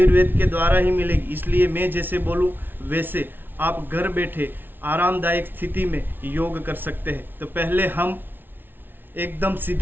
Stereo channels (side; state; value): left; late; 0.097 ms